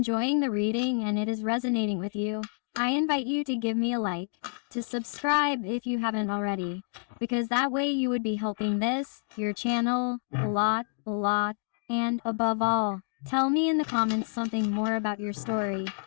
the reading and it is resonating with you, I invite you to give me a like, to subscribe if you haven't already, because that way you would be helping this, your channel, a lot, and above all, tell me in the comments something more about your story,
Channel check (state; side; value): silent; right; digital silence